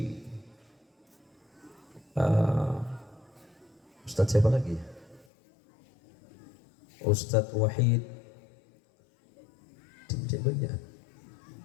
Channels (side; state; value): right; drops out; at 5.2 s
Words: Ustadz siapa lagi? Ustadz Wahid,